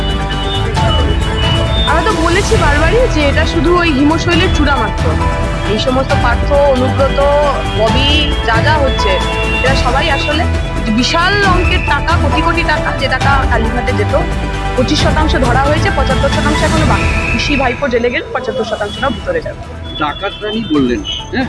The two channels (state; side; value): identical; both; correlation 1.00